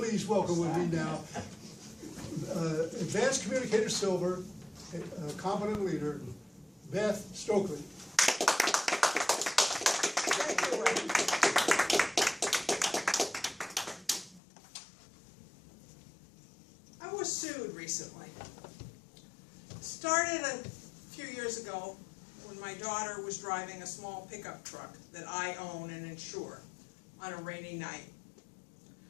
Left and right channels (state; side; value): drops out; right; at 14.4 s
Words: welcome with me now, Advanced Communicator Silver, a competent leader, Beth Stoeckly. Thank you, Ray. I was sued recently. Started a few years ago when my daughter was driving a small pickup truck that I own and insure on a rainy night.